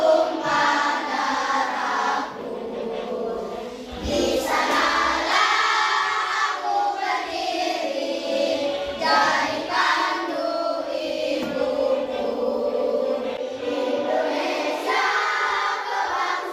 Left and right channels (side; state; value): both; identical; correlation 1.00